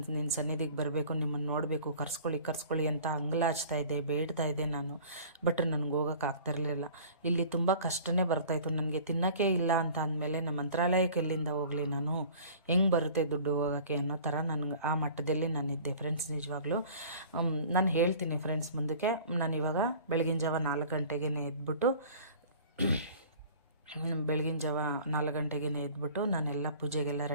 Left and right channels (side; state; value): both; inverted; correlation -0.45